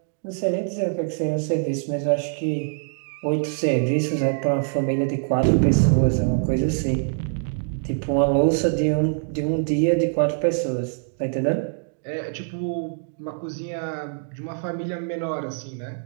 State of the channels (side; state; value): left; silent; digital silence